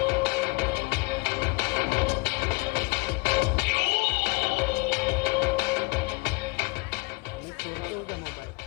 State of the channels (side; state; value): right; quieter; 28.2 dB